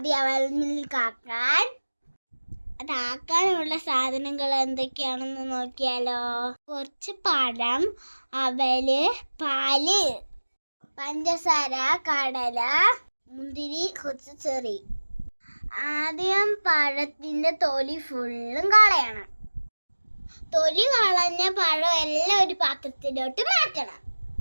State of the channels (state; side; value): inverted; both; correlation -1.00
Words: അവൽമിൽക്കാക്കാൻ. അതാക്കാനുള്ള സാധനങ്ങൾ എന്തൊക്കെയാണെന്ന് നോക്കിയാലോ. കുറച്ച് പഴം, അവല്, പാല്, പഞ്ചസാര, കടല, മുന്തിരി, കുറച്ച് ചെറി. ആദ്യം പഴത്തിൻ്റെ തൊലി ഫുള്ളും കളയണം. തൊലി കളഞ്ഞ പഴം എല്ലാം ഒരു പാത്രത്തിലോട്ട് മാറ്റണം.